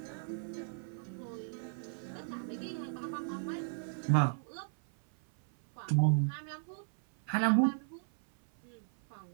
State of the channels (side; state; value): left; silent; 54 dB below the other